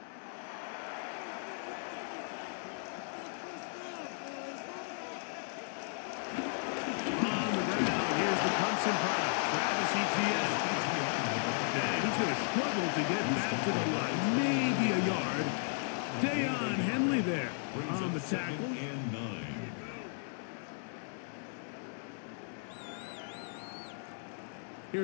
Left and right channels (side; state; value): right; silent; 54 dB below the other